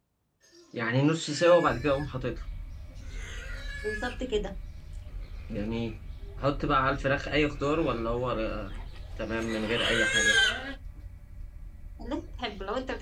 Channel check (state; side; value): identical; both; correlation 1.00